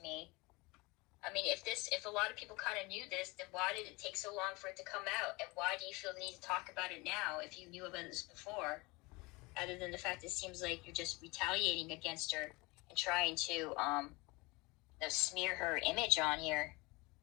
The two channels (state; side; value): quieter; right; 24.7 dB